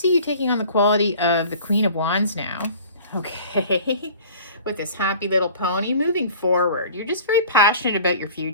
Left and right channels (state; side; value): inverted; both; correlation -0.45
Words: you taking on the quality of the Queen of Wands now, okay? With this happy little pony moving forward. You're just very passionate about your